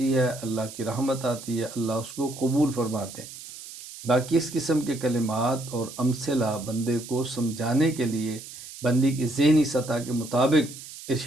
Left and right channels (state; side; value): noise; right; hiss, 14 dB below the sound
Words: ہے، اللہ کی رحمت آتی ہے، اللہ اس کو قبول فرماتے ہیں۔ باقی اس قسم کے کلمات اور امثلہ بندے کو سمجھانے کے لیے بندی کی ذہنی سطح کے مطابق